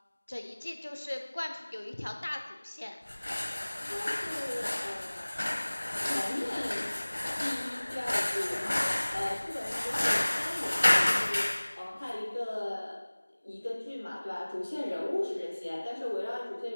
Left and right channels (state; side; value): inverted; both; correlation -1.00